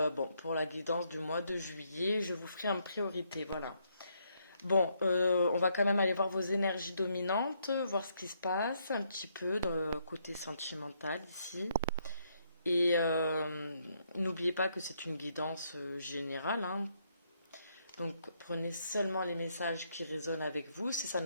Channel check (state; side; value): inverted; both; correlation -0.74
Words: bon, pour la guidance du mois de juillet, je vous ferai en priorité, voilà. Bon, on va quand même aller voir vos énergies dominantes, voir ce qui se passe un petit peu dans le côté sentimental ici. Et n'oubliez pas que c'est une guidance générale, hein. Donc prenez seulement les messages qui résonnent avec vous. Si ça